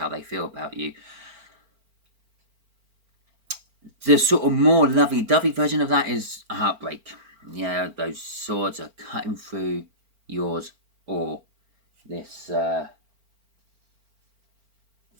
they feel about you. The sort of more lovey-dovey version of that is a heartbreak. Yeah, those swords are cutting through yours or this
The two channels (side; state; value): left; late; 4.4 ms